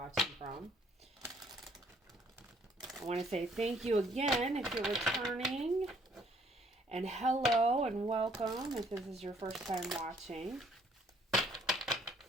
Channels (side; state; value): both; normal; correlation 0.63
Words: from. I want to say thank you again if you're returning, and hello and welcome if this is your first time watching.